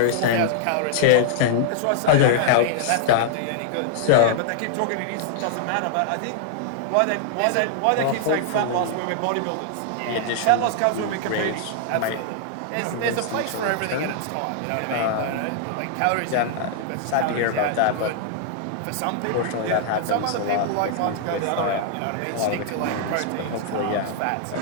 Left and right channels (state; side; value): different; both; correlation -0.01